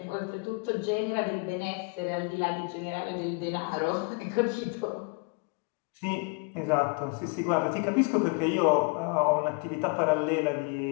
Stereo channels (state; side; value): quieter; right; 32.9 dB